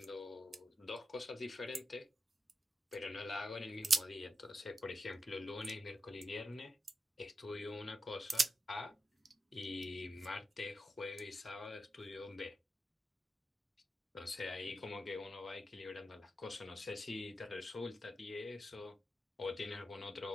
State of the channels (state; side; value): normal; both; correlation 0.89